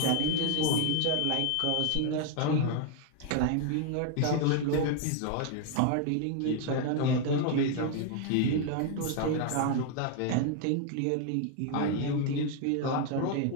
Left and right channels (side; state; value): both; different; correlation 0.00